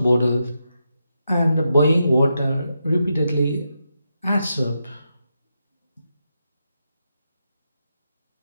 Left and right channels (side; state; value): both; inverted; correlation -0.85